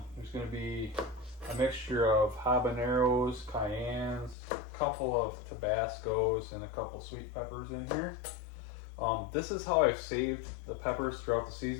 There's going to be a mixture of habaneros, cayennes, a couple of Tabascos, and a couple sweet peppers in here. This is how I've saved the peppers throughout the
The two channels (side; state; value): right; drops out; at 4.4 s